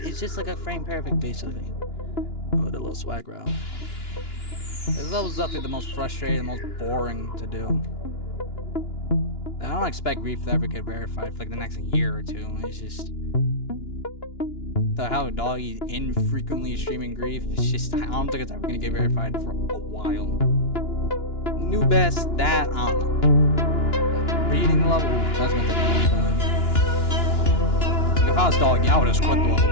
It's just like a frame perfect, basically. Oh, the little swag route. This level's definitely the most frustrating, the most boring to do. I don't expect Grief to ever get verified for like the next year or two. It's just how Doggy infrequently streaming Grief. It's just I don't think it's ever gonna get verified for a while. New best that I don't know. Reading the level, that's gonna take a long time. If I was Doggy, I would have quit the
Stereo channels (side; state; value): right; late; 2.9 ms